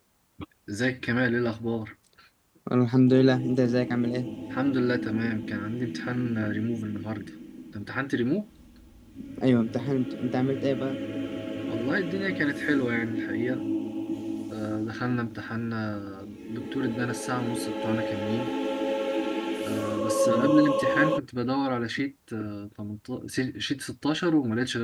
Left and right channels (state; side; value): identical; both; correlation 1.00